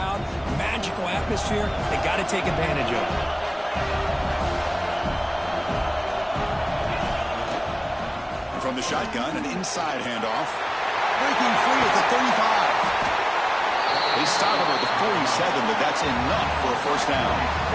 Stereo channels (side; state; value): both; identical; correlation 1.00